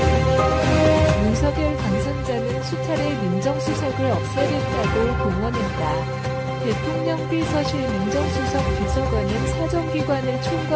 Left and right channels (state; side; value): identical; both; correlation 1.00